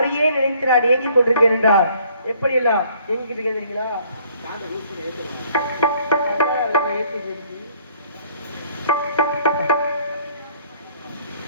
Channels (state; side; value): inverted; both; correlation -0.61